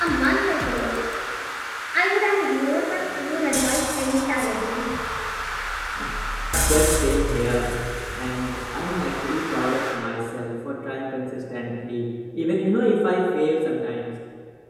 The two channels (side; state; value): both; identical; correlation 1.00